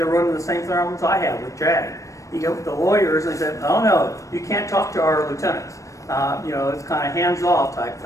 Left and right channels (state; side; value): late; right; 0.16 ms